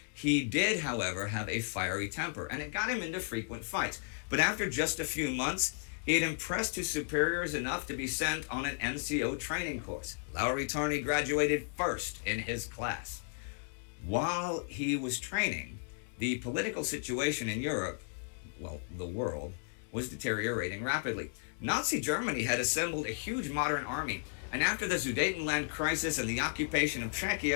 He did, however, have a fiery temper, and it got him into frequent fights. But after just a few months, he had impressed his superiors enough to be sent on an NCO training course. Lauri Törni graduated first in his class. While he was training, the political situation in Europe, well, the world, was deteriorating rapidly. Nazi Germany had assembled a huge modern army, and after the Sudetenland crisis and the occupation of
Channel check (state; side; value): silent; right; digital silence